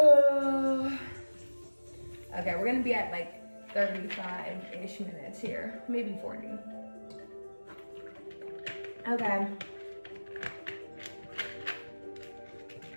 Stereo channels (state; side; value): inverted; both; correlation -1.00